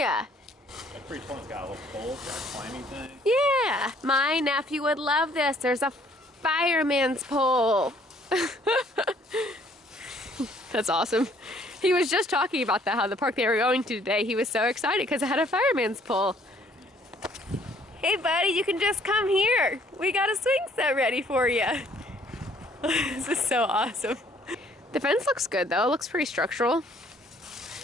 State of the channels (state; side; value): normal; both; correlation 0.61